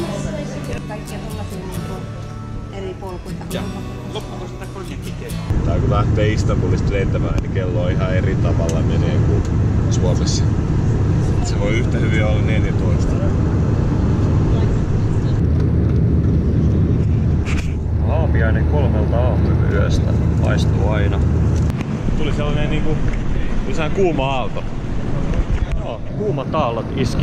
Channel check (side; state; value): both; identical; correlation 1.00